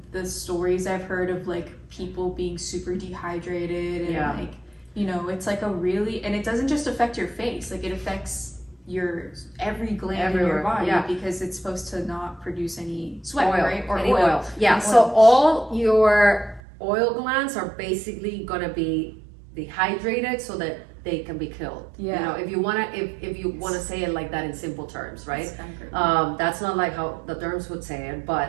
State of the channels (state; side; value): drops out; left; at 16.6 s